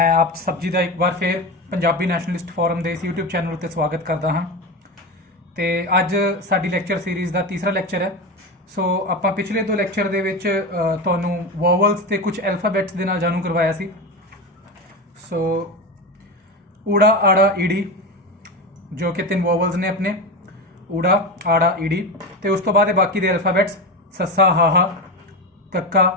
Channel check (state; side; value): normal; both; correlation 0.21